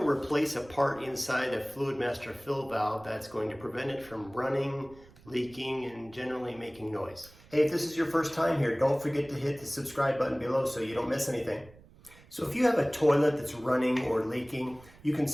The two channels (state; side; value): noise; right; rumble, 23 dB below the sound